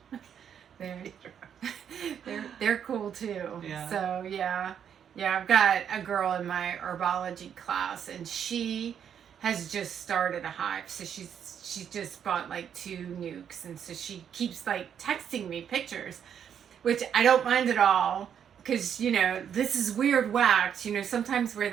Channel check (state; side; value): quieter; left; 8.4 dB